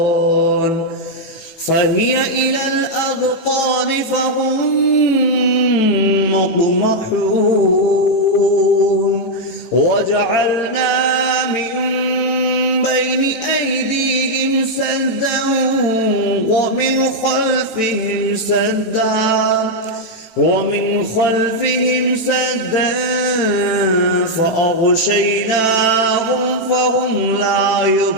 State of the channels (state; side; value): late; right; 18 ms